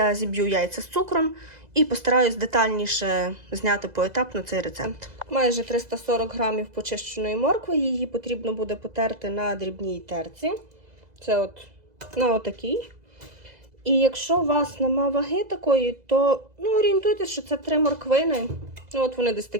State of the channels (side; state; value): left; late; 2.0 ms